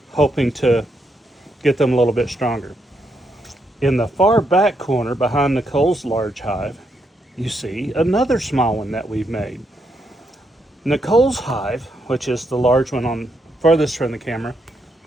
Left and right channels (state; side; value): normal; both; correlation 0.79